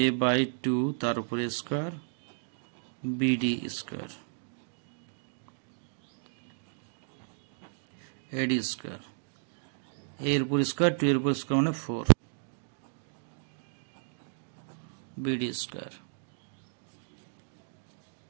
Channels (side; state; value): left; silent; digital silence